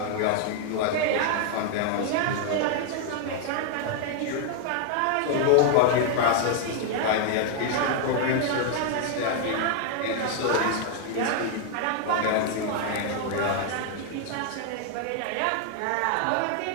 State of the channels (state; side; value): different; both; correlation 0.00